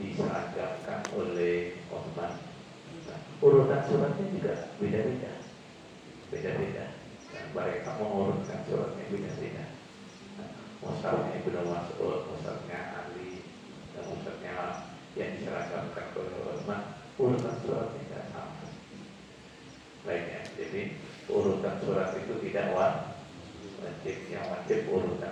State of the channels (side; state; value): both; identical; correlation 1.00